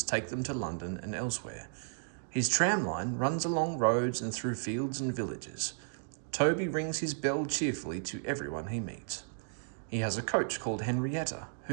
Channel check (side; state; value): left; silent; digital silence